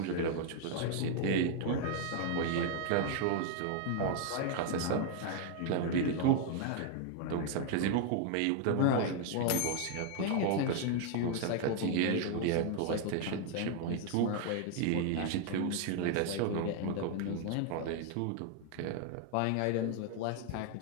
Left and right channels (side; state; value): both; different; correlation 0.00